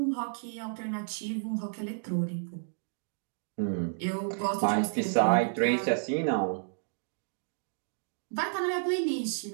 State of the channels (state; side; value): silent; left; digital silence